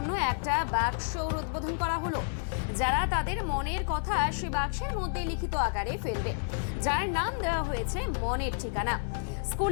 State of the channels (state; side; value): silent; right; digital silence